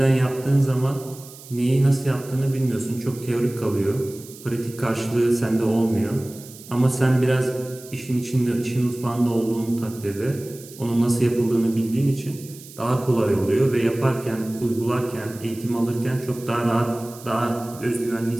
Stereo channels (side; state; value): right; noise; hiss, 18 dB below the sound